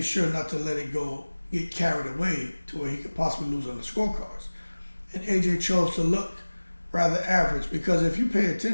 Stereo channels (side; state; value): both; inverted; correlation -1.00